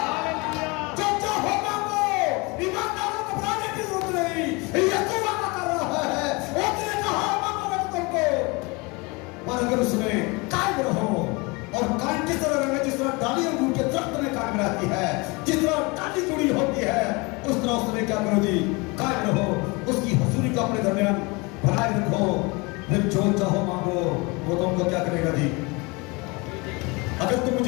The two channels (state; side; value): quieter; right; 26.9 dB